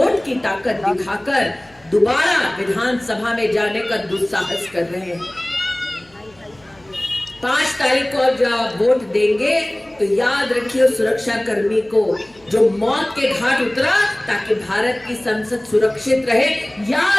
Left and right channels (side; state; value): left; noise; hum, 30 dB below the sound